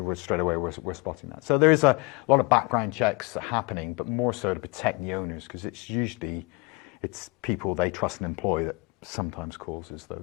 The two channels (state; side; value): quieter; right; 26.9 dB